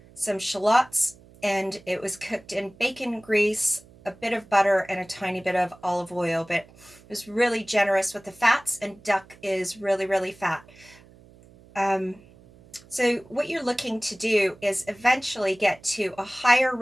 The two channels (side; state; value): right; noise; hum, 25 dB below the sound